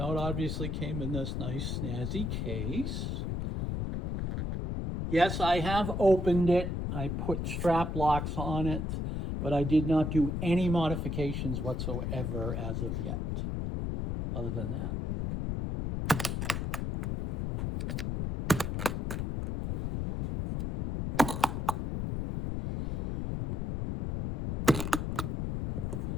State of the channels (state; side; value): noise; left; rumble, 2 dB below the sound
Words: it obviously came in this nice snazzy case. Yes, I have opened it. I put strap locks on it, but I did not do any modifications whatsoever as of yet, other than that.